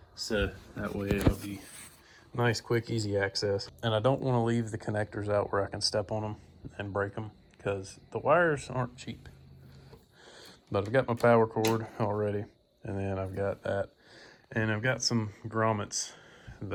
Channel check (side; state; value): both; identical; correlation 1.00